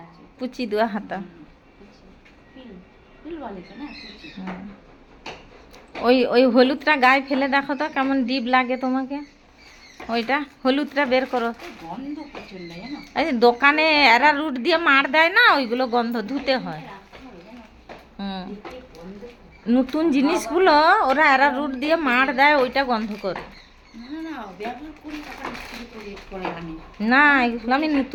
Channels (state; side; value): identical; both; correlation 1.00